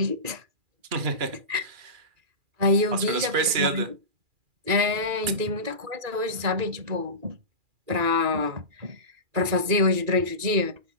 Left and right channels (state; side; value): late; left; 2.4 ms